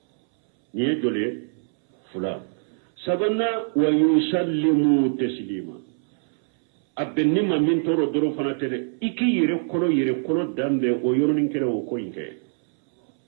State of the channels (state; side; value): silent; left; 63 dB below the other